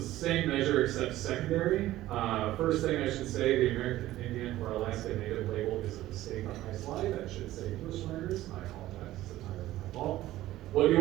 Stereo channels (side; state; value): left; quieter; 15.3 dB